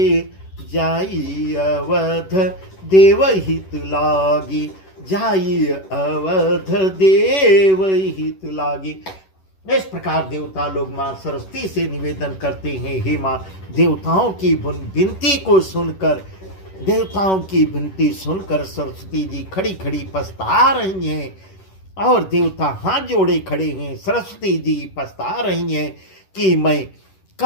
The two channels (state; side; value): late; right; 11 ms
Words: जाई अवध देव हित लागी, जाई अवध देव हित लागी। इस प्रकार देवता लोग मां सरस्वती से निवेदन करते हैं, हे मां, देवताओं की विनती को सुनकर, देवताओं की विनती सुनकर सरस्वती जी खड़ी खड़ी पछता रही हैं और देवता हाथ जोड़े खड़े हैं। सरस्वती जी पछता रही हैं कि मैं